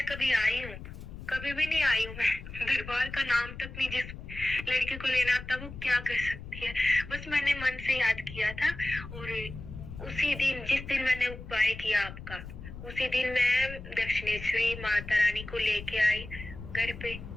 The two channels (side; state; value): left; noise; rumble, 12 dB below the sound